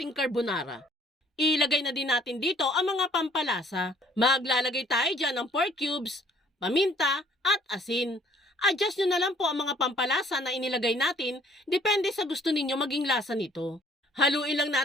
carbonara. Ilagay na din natin dito ang mga pampalasa. Maglalagay tayo dyan ng pork cubes, paminta at asin. Adjust nyo na lang po ang mga pampalasa na inilagay natin, depende sa gusto ninyo maging lasa nito. Haluin lang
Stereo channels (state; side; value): normal; both; correlation 0.58